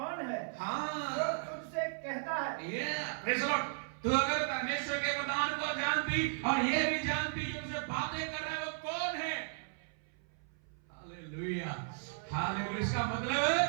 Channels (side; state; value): left; silent; 54 dB below the other